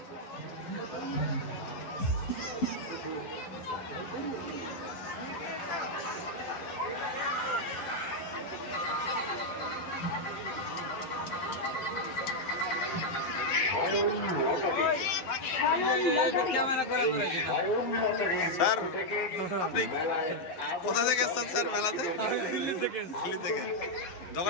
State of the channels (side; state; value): right; late; 11 ms